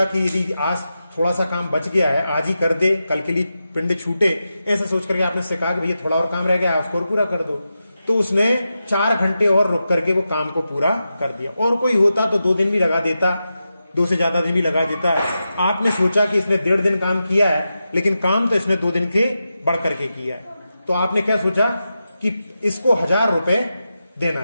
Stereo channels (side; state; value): both; inverted; correlation -0.89